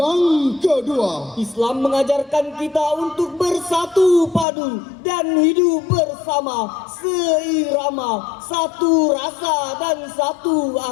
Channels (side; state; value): right; drops out; at 4.5 s